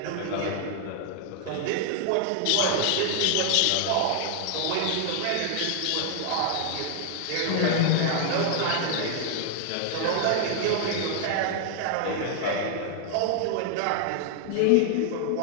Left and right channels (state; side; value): different; both; correlation 0.00